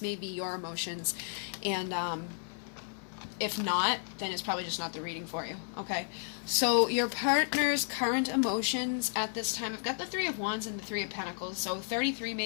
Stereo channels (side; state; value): right; silent; 56 dB below the other